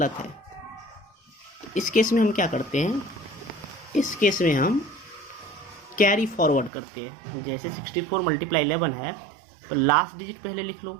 है। इस केस में हम क्या करते हैं, इस केस में हम कैरी फॉरवर्ड करते हैं। जैसे 64 मल्टीप्लाई 11 है तो लास्ट डिजिट पहले लिख लो,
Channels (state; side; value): drops out; left; at 6.7 s